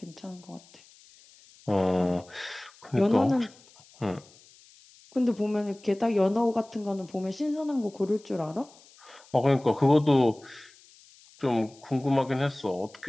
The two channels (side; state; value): left; noise; hiss, 26 dB below the sound